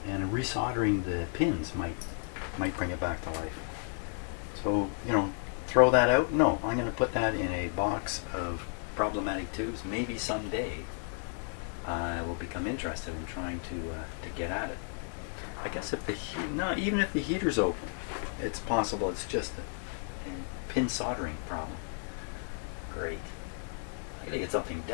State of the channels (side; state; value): right; silent; 56 dB below the other